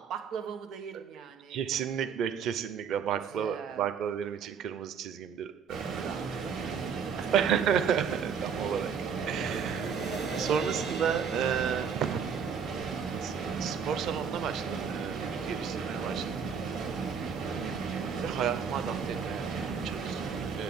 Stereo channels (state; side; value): quieter; left; 6.7 dB